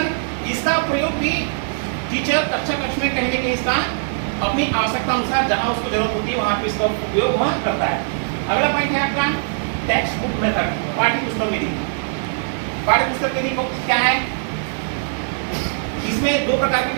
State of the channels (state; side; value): silent; left; digital silence